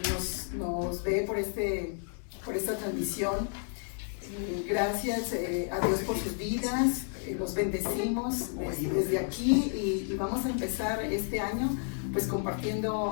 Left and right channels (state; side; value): silent; right; 57 dB below the other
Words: nos ve por esta transmisión. Gracias a Dios por sus vidas, los bendecimos desde aquí y vamos a empezar este año pues